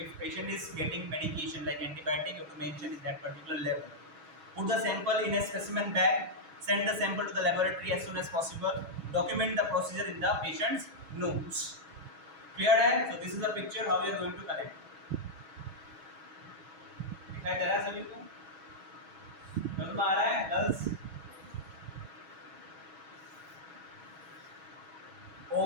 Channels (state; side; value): late; left; 6.2 ms